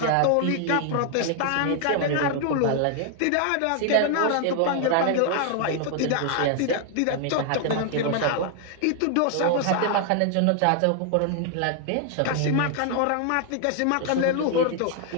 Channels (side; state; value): both; different; correlation 0.00